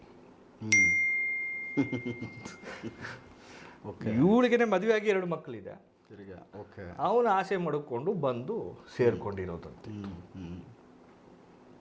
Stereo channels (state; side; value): identical; both; correlation 1.00